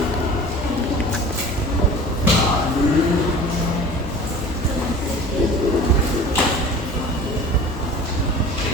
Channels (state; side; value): normal; both; correlation 0.41